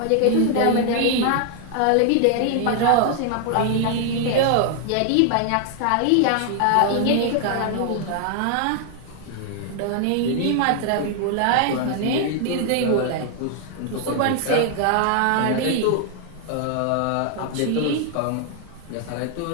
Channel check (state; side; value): different; both; correlation 0.00